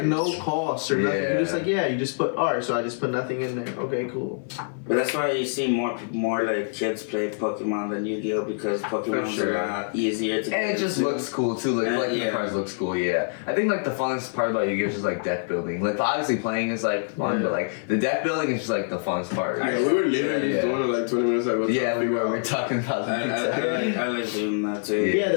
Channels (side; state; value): right; silent; 55 dB below the other